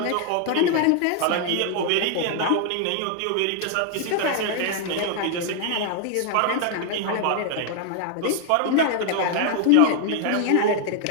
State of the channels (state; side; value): different; both; correlation 0.00